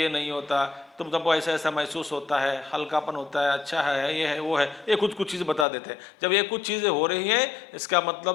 नहीं होता, तुम सबको ऐसा ऐसा महसूस होता है, हल्कापन होता है, अच्छा है, ये है, वो है, ये कुछ चीज़ें बता देते हैं। जब ये कुछ चीज़ें हो रही हैं, इसका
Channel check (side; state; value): right; drops out; at 5.7 s